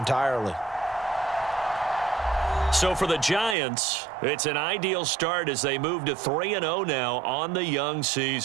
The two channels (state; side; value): drops out; left; at 3.6 s